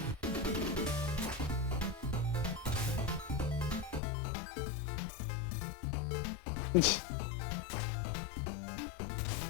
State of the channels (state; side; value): drops out; right; at 4.0 s